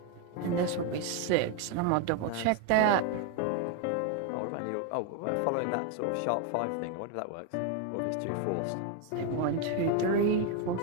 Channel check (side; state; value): both; different; correlation 0.01